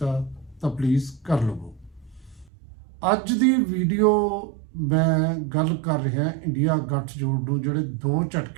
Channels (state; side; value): drops out; left; at 2.5 s